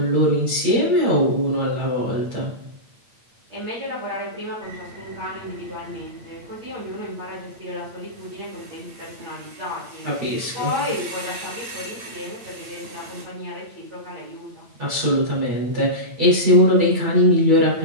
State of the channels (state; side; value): late; left; 8.8 ms